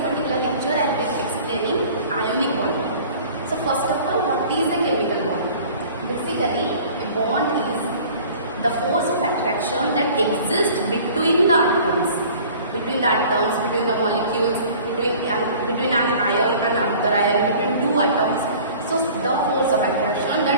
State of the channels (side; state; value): both; inverted; correlation -0.47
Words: particular lecture I will be explaining ionic bonding. So first of all, what is a chemical bond? Basically, a bond is the force of attraction that exists between the atoms, between the molecules, between an ion and another ion, between two atoms. So the force of attraction